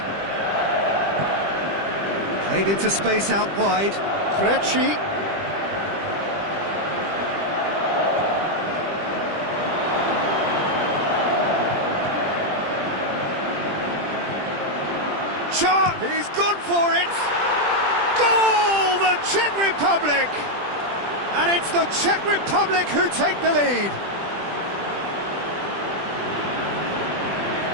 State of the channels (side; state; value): left; late; 20 ms